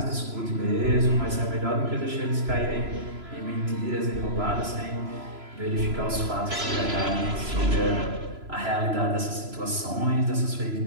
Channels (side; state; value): left; late; 3.0 ms